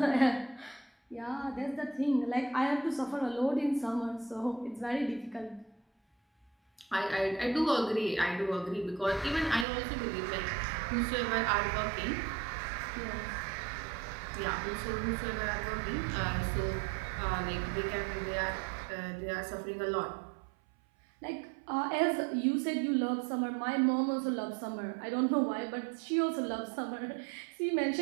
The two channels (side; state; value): left; drops out; at 9.7 s